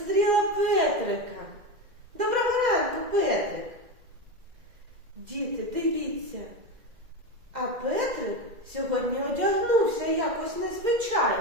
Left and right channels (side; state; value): left; late; 2.0 ms